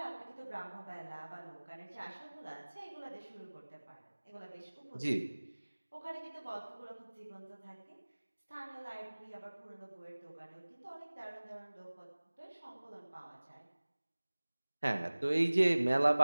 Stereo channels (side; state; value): both; inverted; correlation -1.00